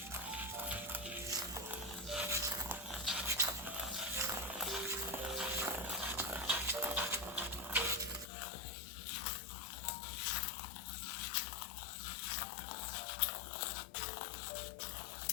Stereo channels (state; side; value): drops out; right; at 8.2 s